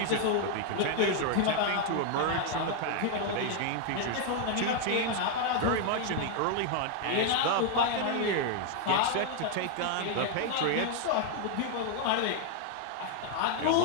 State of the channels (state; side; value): different; both; correlation 0.00